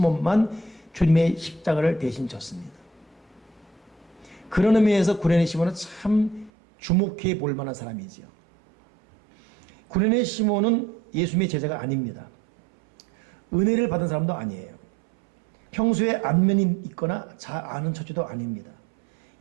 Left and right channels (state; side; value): drops out; left; at 6.5 s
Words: 주님의 십자가를 대신 졌습니다. 그런 의미에서 구레네 시몬은 참 주목해 볼 만한 사람이지요. 구레네 시몬은 예수님의 제자가 아닙니다. 은혜를 받은 사람도 아니에요. 평소에 안면이 있거나 잘 아는 처지도 아닙니다.